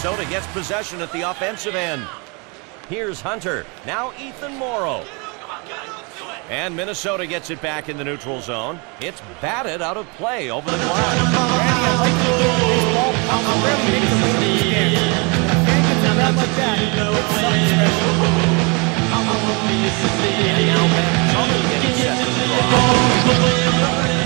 gets possession at the offensive end. Here's Hunter. Now Ethan Morrow. And Minnesota gets it back in the neutral zone. It's batted out of play over the glass.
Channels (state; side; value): quieter; left; 31.3 dB